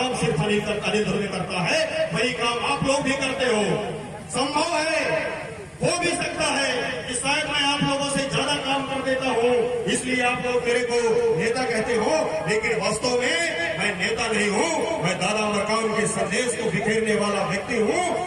अनिल ध्रुवे करता है वही काम आप लोग भी करते हो। संभव है, हो भी सकता है कि शायद मैं आप लोगों से ज्यादा काम कर देता हूँ, इसलिए आप लोग मेरे को नेता कहते हो, लेकिन वास्तव में मैं नेता नहीं हूँ। मैं दादा मरकाम के संदेश को बिखेरने वाला व्यक्ति हूँ।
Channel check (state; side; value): identical; both; correlation 1.00